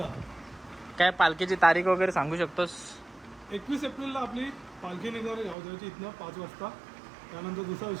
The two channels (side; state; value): left; drops out; at 5.6 s